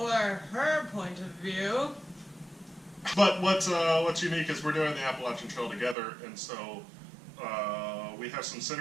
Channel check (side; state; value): left; drops out; at 6.0 s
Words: her point of view. But what's unique is we're doing the Appalachian Trail together, and so we have some